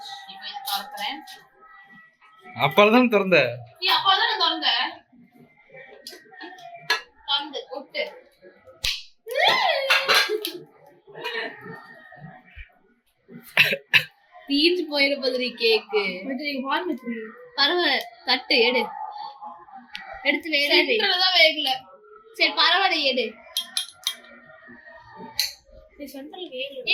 இப்போ இதை திறக்கிறேன். அப்பதான் திறந்த. நீ அப்பதான் நான் திறந்தேன். திறந்து கொட்டு. தீஞ்சு போயிட போதுரி கேக்கு. பரவாயில்ல. தட்டு எடு. எடுத்து வேகதான் வேகல. சரி பரவாயில்ல எடு.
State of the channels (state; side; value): identical; both; correlation 1.00